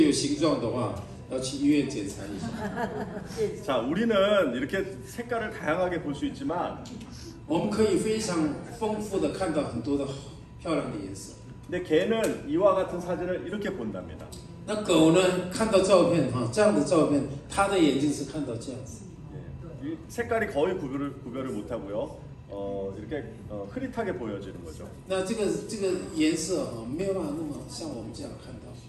有形状的话，要去医院检查一下。 자, 우리는 이렇게 색깔을 다양하게 볼 수 있지만 我们可以非常丰富的看到很多的漂亮的颜色。 근데 개는 이와 같은 사진을 이렇게 본답니다. 那狗呢，看到照片哈，这样的照片，它的眼睛是看到这样子。 예, 이 색깔이 거의 구별을 못하고요. 이렇게 흐릿하게 보여지는 거죠. 那这个颜色哈，没有办法那么像我们这样看到，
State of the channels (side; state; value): both; identical; correlation 1.00